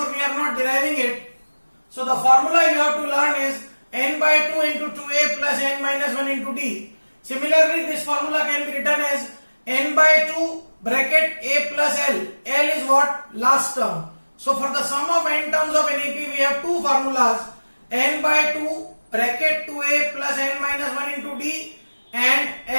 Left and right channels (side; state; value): both; inverted; correlation -1.00